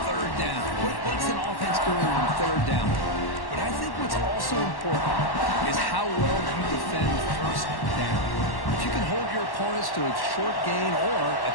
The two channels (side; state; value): right; late; 1.1 ms